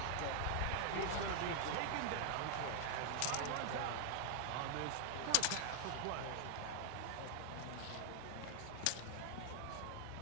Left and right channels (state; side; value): different; both; correlation 0.00